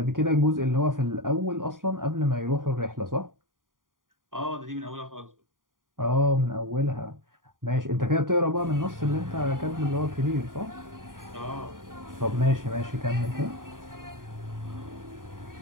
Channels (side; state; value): left; late; 0.90 ms